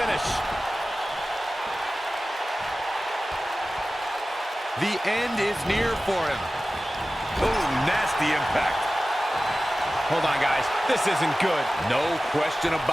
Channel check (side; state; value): both; normal; correlation 0.96